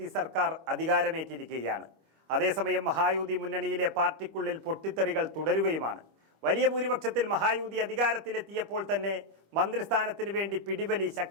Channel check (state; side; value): late; left; 25 ms